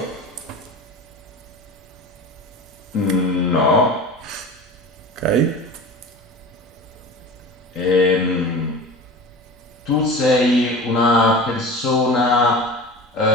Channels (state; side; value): normal; both; correlation 0.34